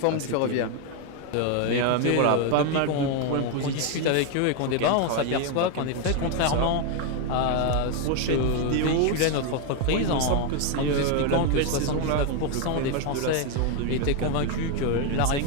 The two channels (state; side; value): different; both; correlation 0.01